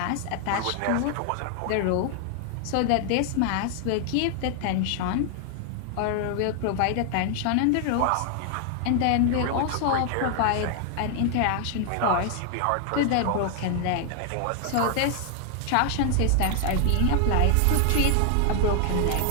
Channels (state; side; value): different; both; correlation 0.00